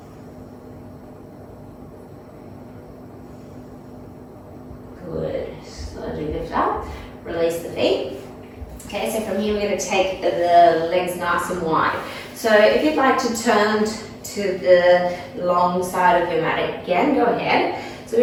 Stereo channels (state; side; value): identical; both; correlation 1.00